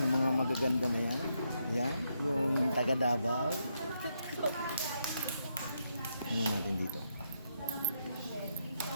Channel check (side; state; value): both; inverted; correlation -0.79